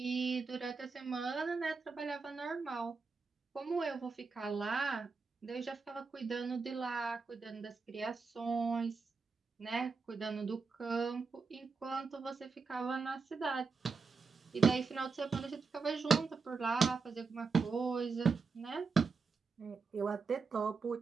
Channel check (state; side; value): quieter; left; 4.7 dB